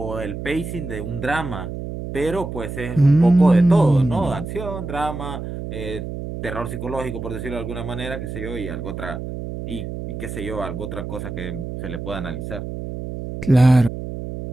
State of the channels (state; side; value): noise; right; hum, 7 dB below the sound